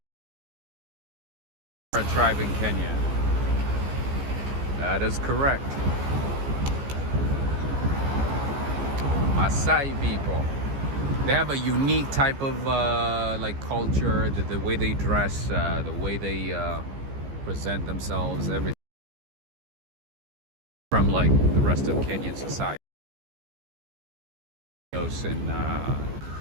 are a tribe in Kenya. That is correct. Maasai people. They have a unique type of like culture, the way they dress, the way they present themselves, everything from like the rest of Kenyan society. And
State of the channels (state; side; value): late; left; 15 ms